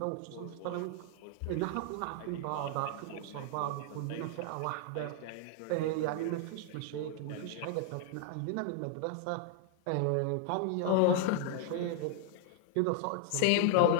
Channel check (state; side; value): different; both; correlation 0.00